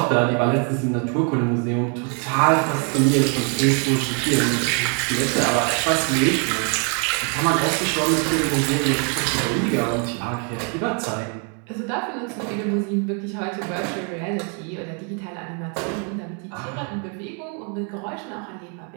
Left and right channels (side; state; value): left; quieter; 39.2 dB